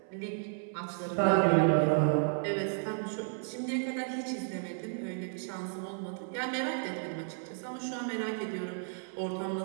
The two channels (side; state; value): left; silent; 56 dB below the other